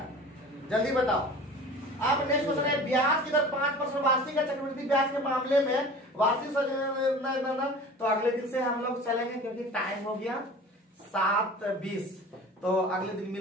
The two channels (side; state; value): both; normal; correlation 0.40